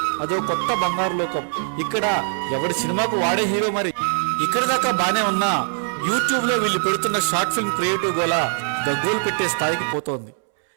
అదో కొత్త బంగారు లోకం. ఇక్కడ ఎవడి సినిమాకు వాడే హీరో మరి. ఇక్కడ దాకా బానే ఉన్నా యూట్యూబ్ లో వీళ్ళు పెడుతున్న షార్ట్ ఫిల్మ్ క్రియేటివ్ గోల గగ్గోలు పెట్టే స్థాయికి పోతోంది.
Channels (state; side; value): silent; left; 64 dB below the other